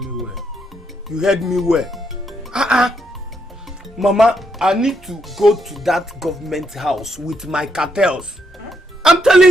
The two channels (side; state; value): both; normal; correlation 0.77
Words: you heard me well. Mama, I need to go to that government house with my cartels. I'm